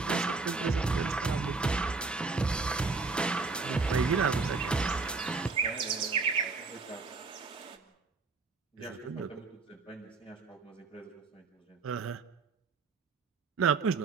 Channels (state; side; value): quieter; left; 4.2 dB